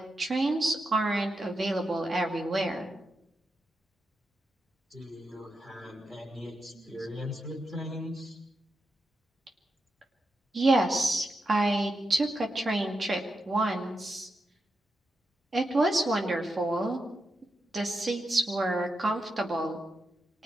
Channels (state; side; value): normal; both; correlation 0.87